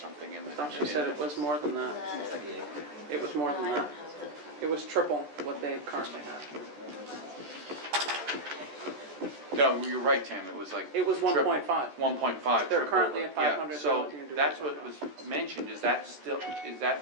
in the... I thought you said it was more than that. It was more than that. It was triple what they currently have. No, you're right, Tam, it was like. It was 1.5. 1.5. They're triple, currently at 500, Yeah, so they're looking to do that's what 1.5. was mentioned, is that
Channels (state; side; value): late; left; 14 ms